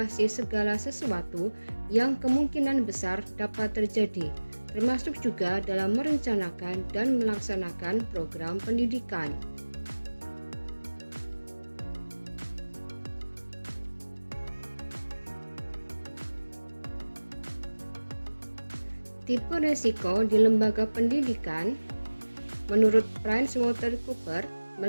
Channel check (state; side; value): inverted; both; correlation -1.00